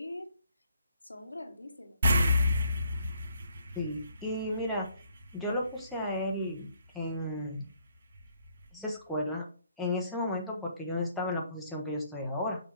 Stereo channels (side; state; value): both; inverted; correlation -0.66